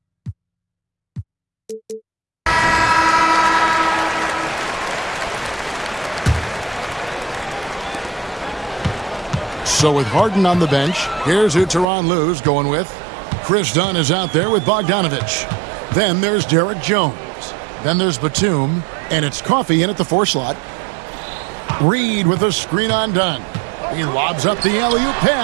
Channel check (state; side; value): drops out; left; at 11.9 s